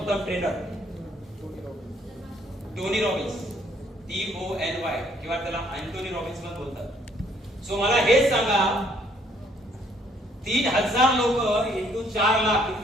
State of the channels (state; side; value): normal; both; correlation 0.65